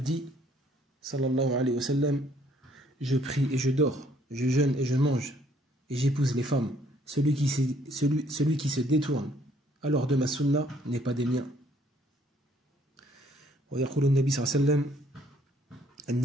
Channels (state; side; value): normal; both; correlation 0.64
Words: dit sallallahu alayhi wa sallam, je prie et je dors, je jeûne et je mange et j'épouse les femmes. Celui qui se détourne alors de ma sunna n'est pas des miens. ويقول النبي صلى الله عليه وسلم